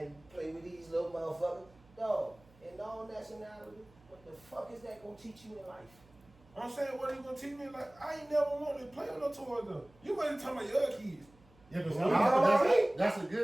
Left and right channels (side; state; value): right; noise; hum, 28 dB below the sound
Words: play with these little motherfuckers. Dog, in all nationality, what the fuck is that gonna teach you in life? I'm saying, what are you going to teach me? Like, I ain't never wanted to play with no toys, though. You wasn't talking about your other kids. Yeah, but That's a